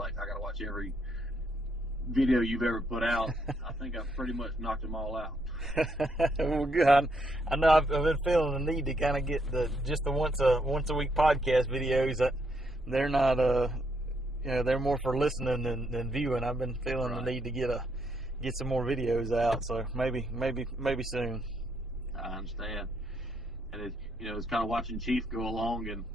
I got to watch every video you've ever put out. I think I've pretty much knocked them all out. Well, good. I know I've been feeling the need to kind of get the once a week podcast videos. That they're not they're more for listening than viewing. I've been feeling the need to get some more videos out. So maybe soon. I understand. And it's kind of watching Chief go along and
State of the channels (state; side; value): normal; both; correlation 0.75